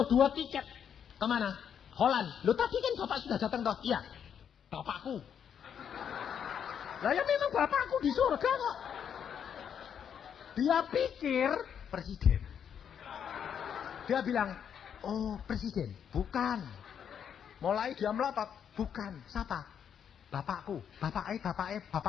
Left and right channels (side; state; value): right; quieter; 8.2 dB